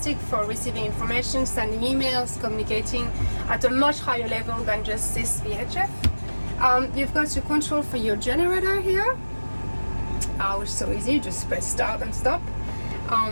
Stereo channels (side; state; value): both; inverted; correlation -1.00